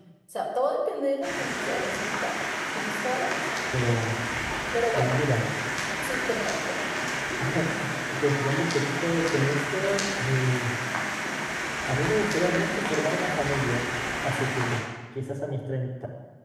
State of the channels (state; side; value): identical; both; correlation 1.00